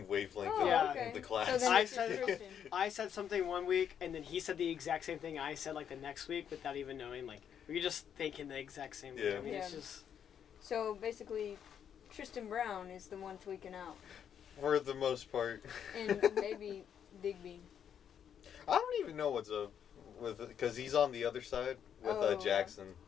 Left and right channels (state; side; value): quieter; right; 8.6 dB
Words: wavelength okay. in the class. So then I said something one week, and then he said the exact same thing I said, like, the next week without even knowing. Like, we were just thinking the exact same thing. Yeah. I mean, Yeah. it's just... So, basically, Tristan Brown is the one tweaking out. For the most part. And maybe Digby. I don't even know what's up with, because he's on the other side with Jackson.